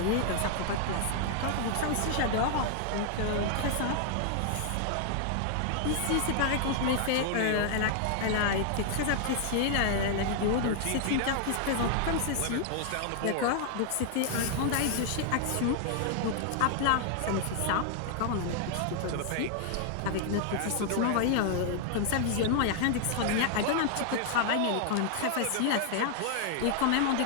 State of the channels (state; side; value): different; both; correlation 0.00